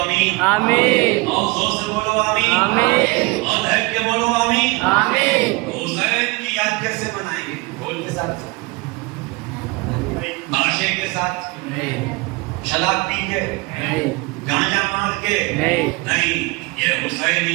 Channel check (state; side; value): quieter; left; 24.7 dB